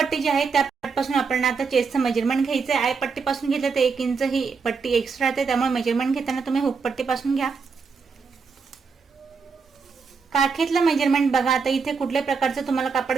जी आहे त्या पासून आपल्याला आता चेस्टचं मेजरमेंट घ्यायचंय. आय पट्टीपासून घेतलं तर 1 इंच ही पट्टी एक्स्ट्रा येते, त्यामुळे मेजरमेंट घेताना तुम्ही हुक पट्टीपासून घ्या. काखेतलं मेजरमेंट बघा, आता इथे कुठल्याही प्रकारचं तुम्हाला कापड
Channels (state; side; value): quieter; left; 5.2 dB